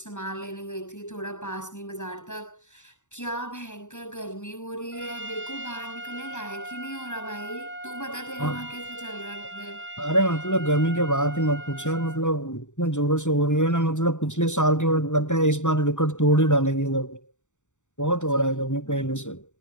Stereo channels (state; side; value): late; right; 0.85 ms